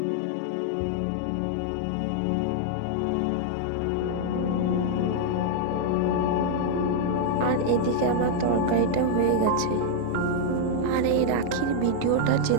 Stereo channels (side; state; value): both; different; correlation 0.00